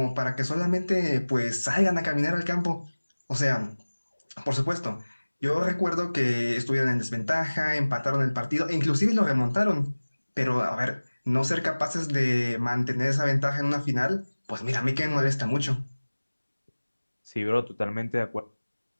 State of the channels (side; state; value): both; inverted; correlation -1.00